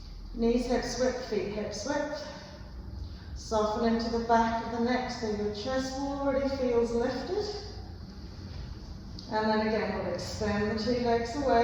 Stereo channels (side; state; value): both; identical; correlation 1.00